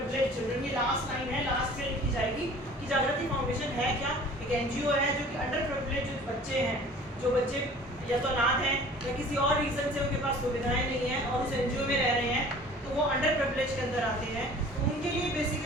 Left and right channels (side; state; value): both; normal; correlation 0.47